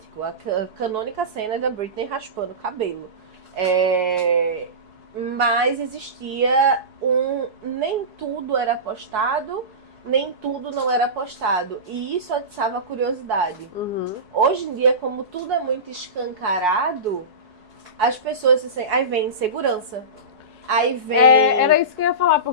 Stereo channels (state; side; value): late; left; 4.7 ms